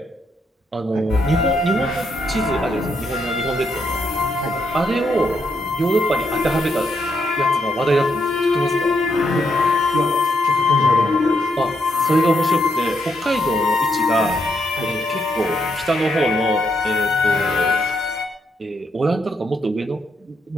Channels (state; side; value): normal; both; correlation 0.78